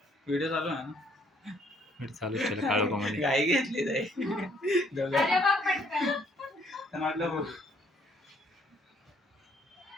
व्हिडिओ चालू आहे ना. चालू केलं काळू कोमध्ये गाई घेतली जाई अरे बघ पटकन. म्हटलं बघ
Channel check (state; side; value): normal; both; correlation 0.66